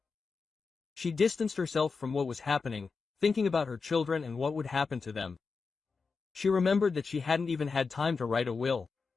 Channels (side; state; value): right; quieter; 4.8 dB